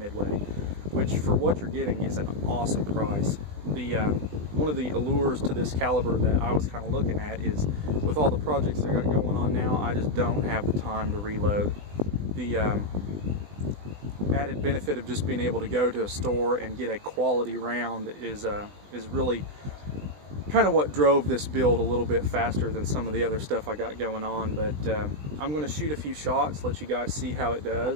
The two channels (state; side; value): late; left; 20 ms